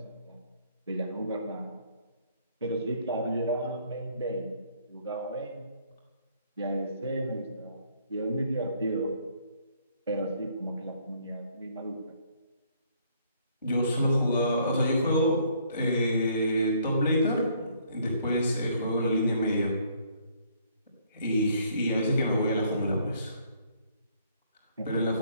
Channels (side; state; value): both; inverted; correlation -0.64